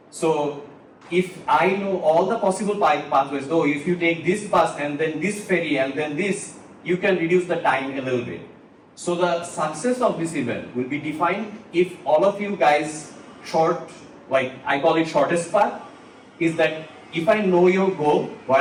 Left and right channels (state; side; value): identical; both; correlation 1.00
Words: So if I know all the possible pathways, though if you take this bus and then this ferry and then this, you can reduce the time a little bit. So the success of this event will be defined if all of you guys like I call it shortest path, is that if I know your goal,